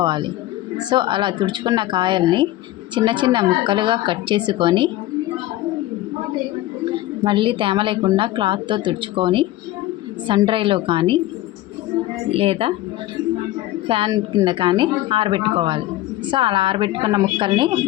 సో అలా తుడుచుకున్న కాయల్ని చిన్న చిన్న ముక్కలుగా కట్ చేసుకొని మళ్ళీ తేమ లేకుండా క్లాత్తో తుడుచుకొని సన్ డ్రైలో కానీ లేదా ఫ్యాన్ కింద కానీ ఆరబెట్టుకోవాలి. సో అలా ఆరబెట్టుకున్న ముక్కల్ని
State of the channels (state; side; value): quieter; right; 15.7 dB